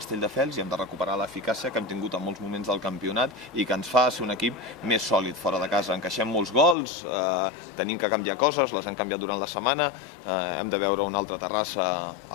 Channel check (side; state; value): right; drops out; at 6.8 s